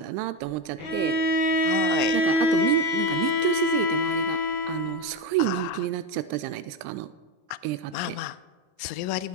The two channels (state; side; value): late; left; 20 ms